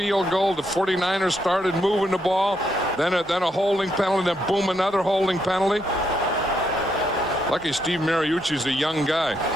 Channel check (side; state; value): both; normal; correlation 0.78